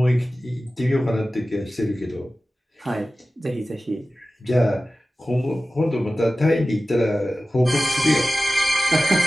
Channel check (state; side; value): normal; both; correlation 0.96